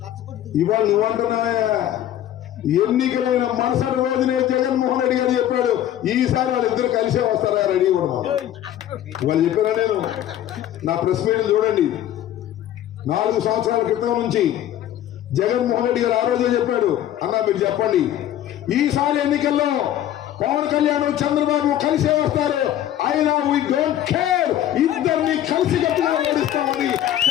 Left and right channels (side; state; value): right; quieter; 11.8 dB